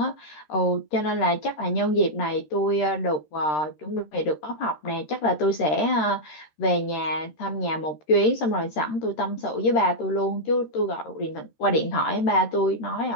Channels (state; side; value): late; right; 13 ms